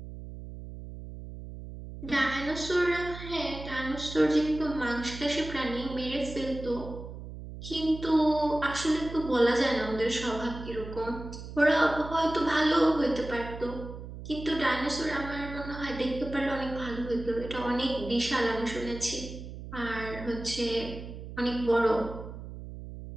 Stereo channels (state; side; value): noise; right; hum, 11 dB below the sound